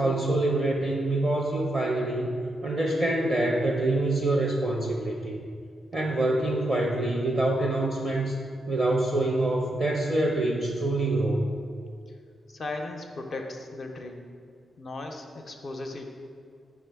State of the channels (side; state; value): both; normal; correlation 0.81